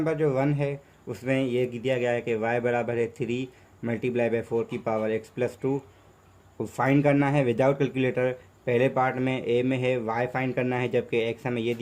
जो 1 है उसमें ये दिया गया है कि y बराबर है 3 मल्टीप्लाई बाई 4 की पावर x प्लस 2। फाइंड करना है विदाउट कैलकुलेटर। पहले पार्ट में ए में है y फाइंड करना है, जबकि x हमें ये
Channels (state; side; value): identical; both; correlation 1.00